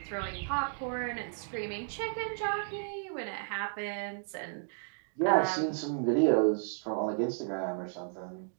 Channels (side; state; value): left; silent; digital silence